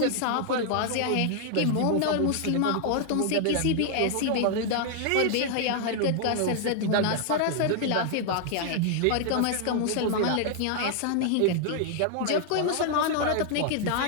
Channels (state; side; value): different; both; correlation 0.00